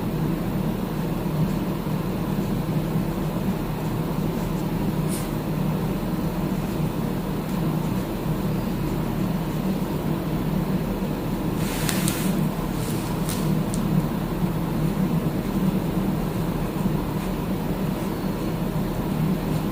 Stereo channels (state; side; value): identical; both; correlation 1.00